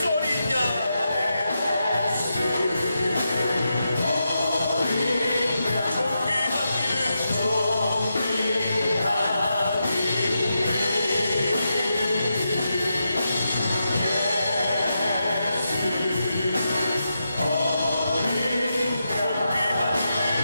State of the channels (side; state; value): both; inverted; correlation -0.86